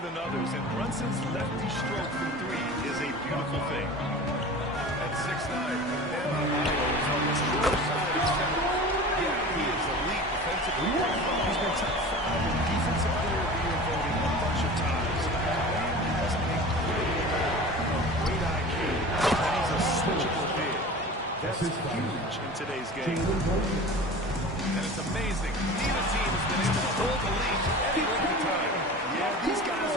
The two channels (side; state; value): both; normal; correlation 0.36